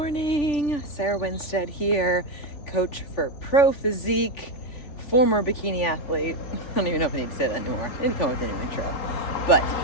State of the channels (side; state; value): right; late; 3.4 ms